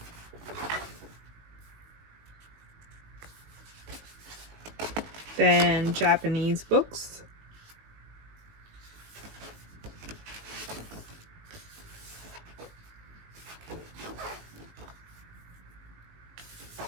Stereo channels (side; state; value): left; late; 19 ms